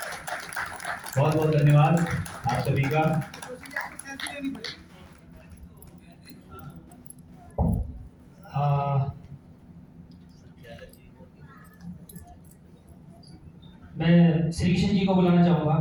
बहुत बहुत धन्यवाद आप सभी का। मैं श्री कृष्ण जी को बुलाना चाहूँगा,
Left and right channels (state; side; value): identical; both; correlation 1.00